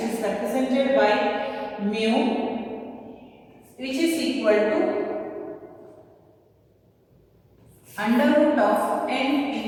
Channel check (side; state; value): both; identical; correlation 1.00